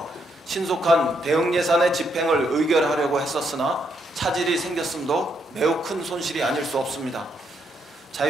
신속한 대응 예산의 집행을 의결하려고 했었으나 차질이 생겼음도 매우 큰 손실이 아닐 수 없습니다.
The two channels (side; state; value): both; normal; correlation 0.76